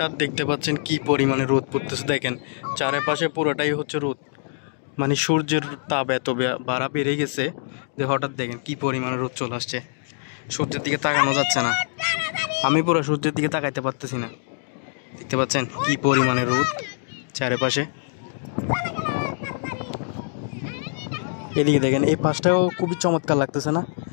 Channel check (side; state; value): right; silent; digital silence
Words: দেখতে পাচ্ছেন কি পরিমাণে রোদ পড়তেছে, দেখেন চারপাশে পুরোটাই হচ্ছে রোদ, মানে সূর্যের তাপ এত বাড়া বেড়ে গেছে যে হঠাৎ দেখেন কি পরিমাণে রোদ চলে আসছে। সূর্যের দিকে তাকানো যাচ্ছে না, আমি পুরো সূর্যের দিকে তাকাইতে পারতেছি না। দেখতে পাচ্ছেন কি পরিমাণে রোদ চারপাশে। এদিকে দেখেন এই পাশটাও খুবই চমৎকার লাগতেছে না,